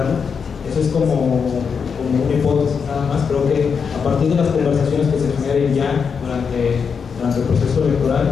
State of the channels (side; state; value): right; quieter; 6.1 dB